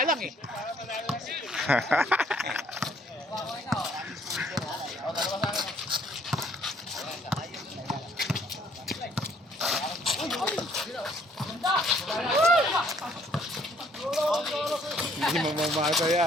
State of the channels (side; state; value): both; normal; correlation 0.63